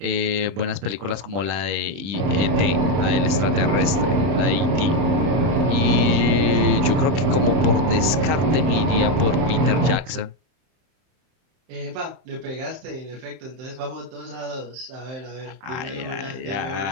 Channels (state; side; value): late; left; 31 ms